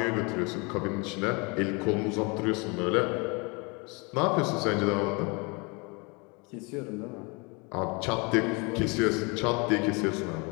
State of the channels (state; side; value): quieter; right; 29.9 dB